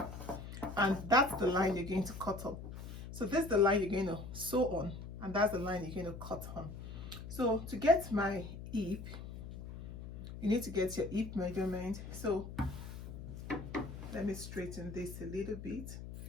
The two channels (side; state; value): left; noise; hum, 10 dB below the sound